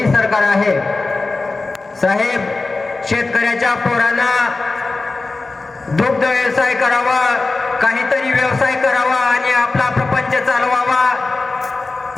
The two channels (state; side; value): quieter; right; 3.5 dB